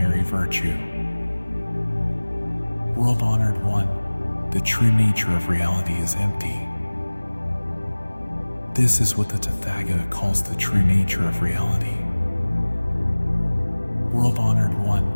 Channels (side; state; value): both; inverted; correlation -1.00